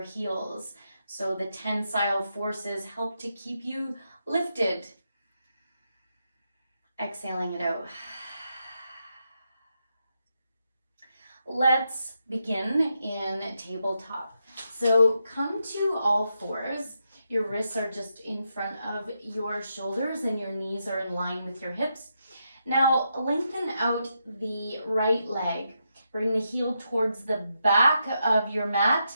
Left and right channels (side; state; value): both; inverted; correlation -0.83